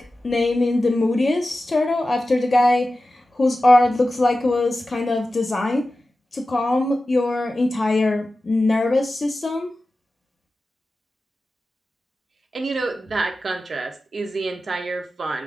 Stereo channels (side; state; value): both; normal; correlation 0.94